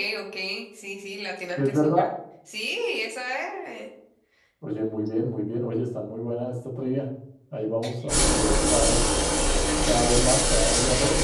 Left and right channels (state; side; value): identical; both; correlation 1.00